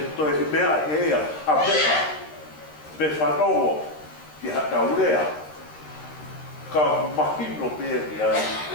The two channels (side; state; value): right; late; 13 ms